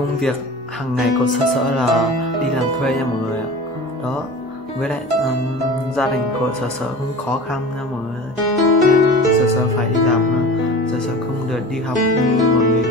việc hàng ngày của Sở là đi làm thuê nha mọi người ạ. Đó, với lại gia đình của Sở cũng khó khăn nha mọi người. Sở phải đi làm, Sở không được đi học như mọi người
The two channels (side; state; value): both; normal; correlation 0.36